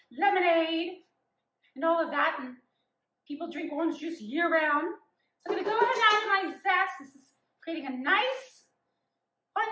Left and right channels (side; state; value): both; identical; correlation 1.00